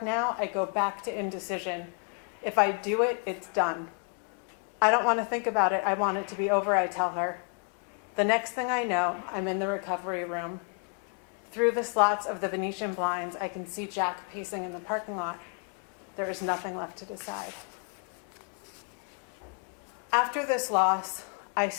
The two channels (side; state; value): right; quieter; 39.0 dB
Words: now, I go back to indecision. If I do it, it's done. I don't want to think about it. I want it to be over, I tell her. The next thing I know, I'm in the recovery room. Through the slots of the Venetian blinds, I can see Jack pacing in the parking lot. There is nothing left to decide. After this loss, I